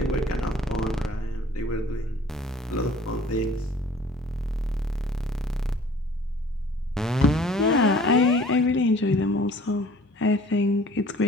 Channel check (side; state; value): both; normal; correlation 0.51